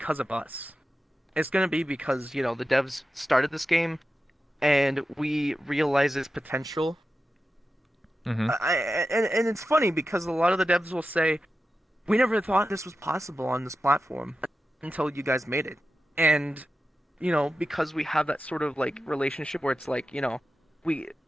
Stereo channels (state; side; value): normal; both; correlation 0.92